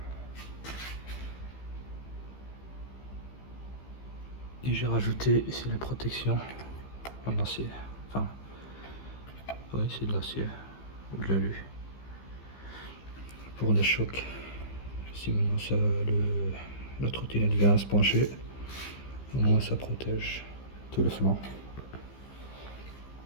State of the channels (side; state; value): right; late; 15 ms